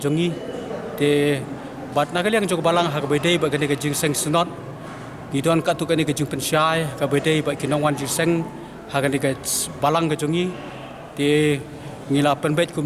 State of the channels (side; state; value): both; identical; correlation 1.00